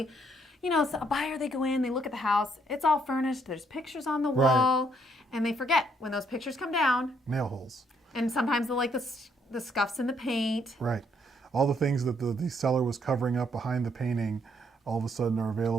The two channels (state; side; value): normal; both; correlation 0.70